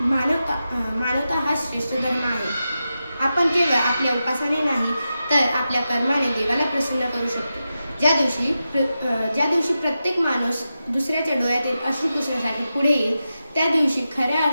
मानवता हाच श्रेष्ठ धर्म आहे. आपण केवळ आपल्या उपासने नाही, तर आपल्या कर्माने देवाला प्रसन्न करू शकतो. ज्या दिवशी प्रत्येक माणूस दुसऱ्याच्या डोळ्यातील अश्रू पुसण्यासाठी पुढे येईल, त्या दिवशी खऱ्या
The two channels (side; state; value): both; inverted; correlation -0.91